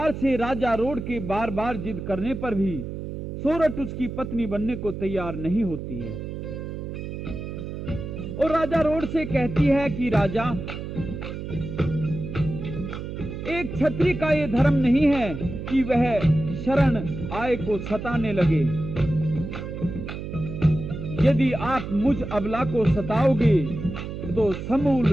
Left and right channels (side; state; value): right; noise; hum, 7 dB below the sound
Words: से राजा रोड के बार बार जिद करने पर भी सोरठ उसकी पत्नी बनने को तैयार नहीं होती है और राजा रोड से कहती है कि राजा, एक क्षत्रिय का ये धर्म नहीं है कि वह शरण आए को सताने लगे। यदि आप मुझ अबला को सताओगे तो समूल